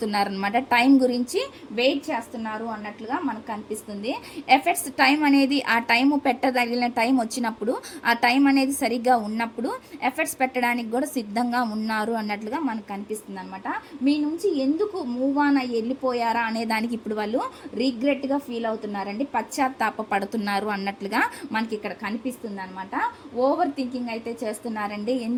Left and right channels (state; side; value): identical; both; correlation 1.00